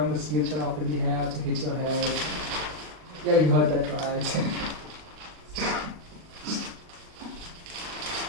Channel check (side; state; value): left; late; 39 ms